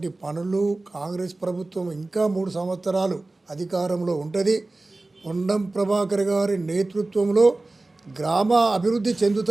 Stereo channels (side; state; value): left; quieter; 3.0 dB